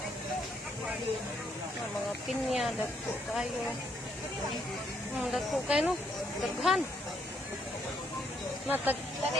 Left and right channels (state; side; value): normal; both; correlation 0.73